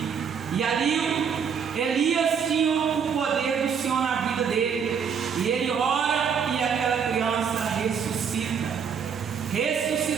E ali Elias tinha o poder do Senhor na vida dele. E ele ora e aquela criança ressuscita.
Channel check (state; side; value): quieter; left; 6.9 dB